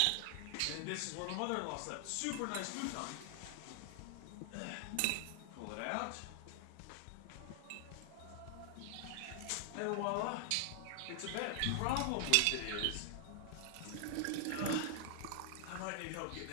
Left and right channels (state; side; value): different; both; correlation 0.00